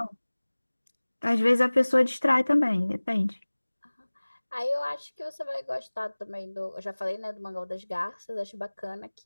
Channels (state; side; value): inverted; both; correlation -1.00